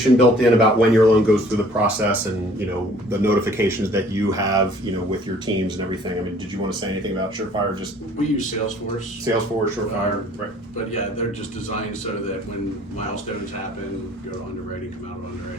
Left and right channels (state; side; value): normal; both; correlation 0.55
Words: built in about when your loan goes through the process and, the notifications that you have, with your teams and everything. I mean, did you want to say anything about Surefire? Just We use Salesforce. Salesforce, Surefire, right? But yeah, they're just designed so that when milestones happen, go to underwriting, come out of